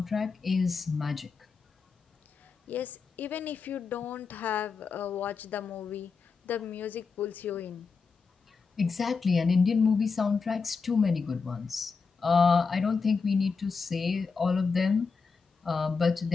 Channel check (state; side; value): quieter; right; 5.0 dB